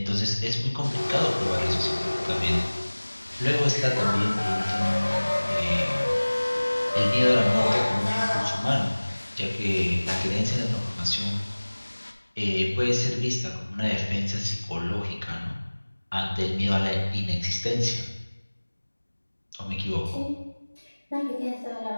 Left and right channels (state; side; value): inverted; both; correlation -1.00